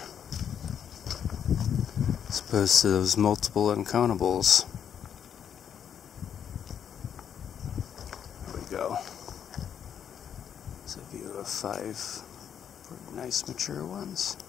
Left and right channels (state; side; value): quieter; right; 8.5 dB